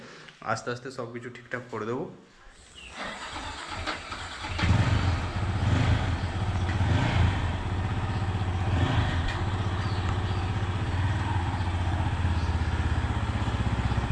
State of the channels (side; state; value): both; identical; correlation 1.00